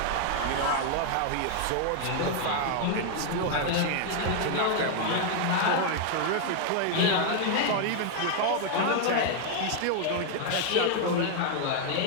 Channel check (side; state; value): both; different; correlation 0.00